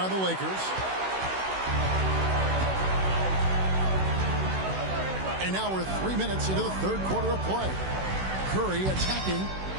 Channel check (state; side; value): late; left; 16 ms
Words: the Lakers. And now we're 3 minutes into the third quarter of play. Curry attacking.